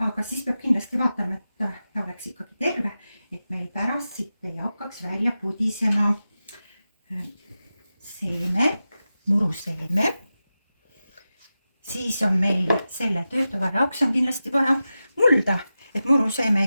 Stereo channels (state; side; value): inverted; both; correlation -0.93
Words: aga siis peab kindlasti vaatama, et ta oleks ikkagi terve, et meil pärast siit ei hakkaks välja pudisema seeme, muruseeme. Siis on meil selle töötoa jaoks on kindlasti vaja mulda, et muruseeme